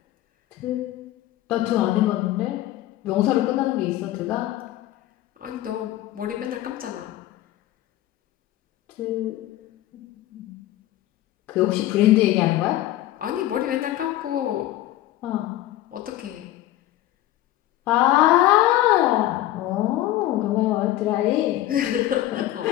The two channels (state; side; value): quieter; right; 14.6 dB